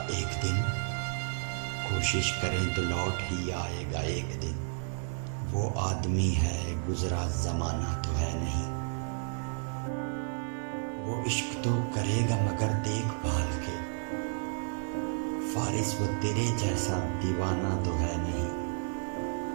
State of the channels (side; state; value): left; silent; 57 dB below the other